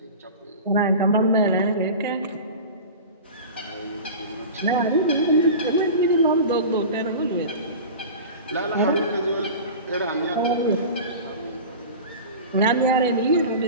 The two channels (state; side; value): inverted; both; correlation -0.33